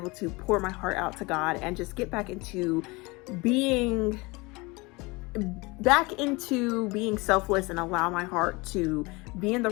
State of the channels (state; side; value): quieter; right; 24.9 dB